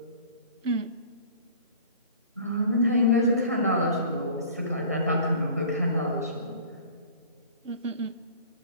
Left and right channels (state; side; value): inverted; both; correlation -0.45